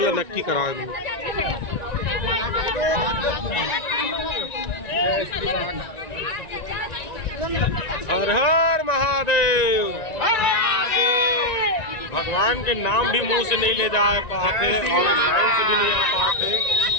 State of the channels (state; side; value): late; right; 1.9 ms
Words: नक्की करा दूं। हर हर महादेव। भगवान के नाम भी मुंह से नहीं ले जा पाते और लाइन से भी नहीं आ पाते।